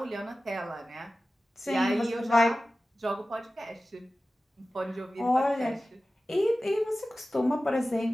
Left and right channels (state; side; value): normal; both; correlation 0.96